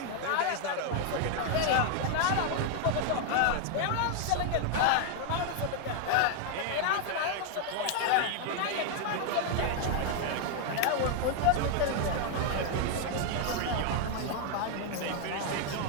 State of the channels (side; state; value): both; different; correlation 0.00